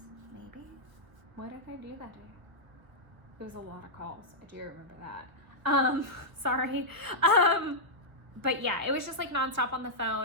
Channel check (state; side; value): late; left; 1.2 ms